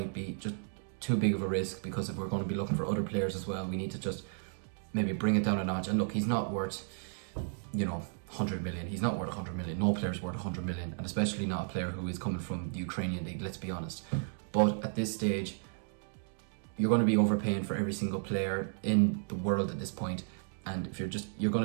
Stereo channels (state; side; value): silent; left; digital silence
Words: be just too big of a risk, because if we're going to be looking for other players as well, we need to just maybe bring it down a notch. And look, he's not worth 100 million. He's not worth 100 million. No player's worth 100 million, and especially not a player who is coming from the Ukrainian league, let's be honest. But at this stage, you're going to be overpaying for every single player in the world at this point, and if you're just